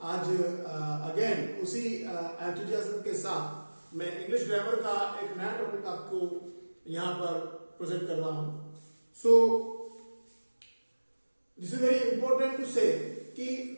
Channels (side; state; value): both; inverted; correlation -1.00